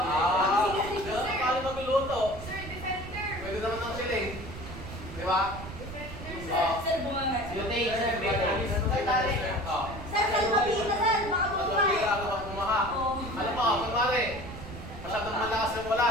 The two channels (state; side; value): noise; right; rumble, 11 dB below the sound